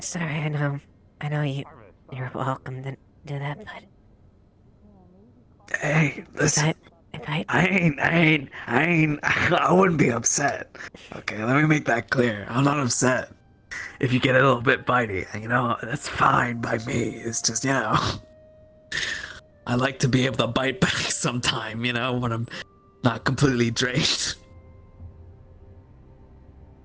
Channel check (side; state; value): both; identical; correlation 1.00